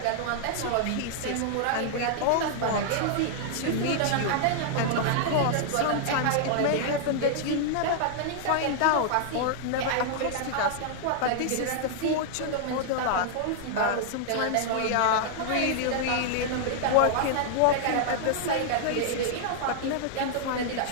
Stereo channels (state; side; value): different; both; correlation -0.01